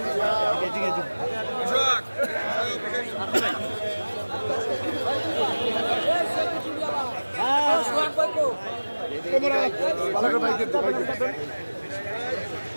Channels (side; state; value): both; inverted; correlation -1.00